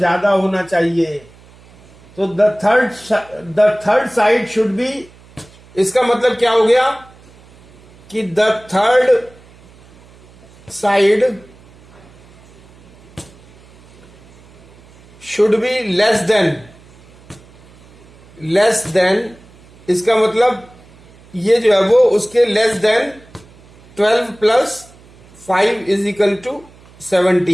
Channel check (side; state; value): right; noise; hum, 25 dB below the sound